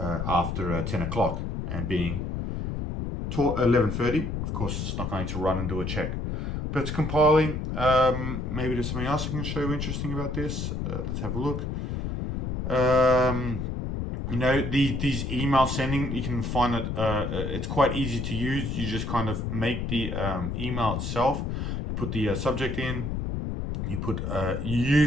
10 o'clock. And being 11:30, of course, it's not going to run and do a check. But it's compiling. Maybe there's something else I can show you interesting about this. Let's have a look. You know, these email sending, you can find it, it's quite easy to use. You just kind of make the email itself. You put the subject in. You put, you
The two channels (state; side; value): noise; left; rumble, 3 dB below the sound